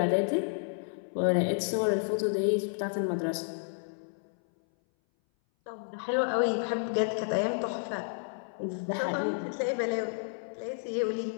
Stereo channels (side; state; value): right; silent; 57 dB below the other